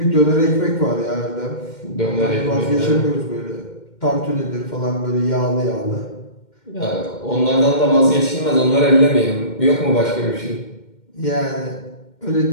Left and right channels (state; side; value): late; right; 2.1 ms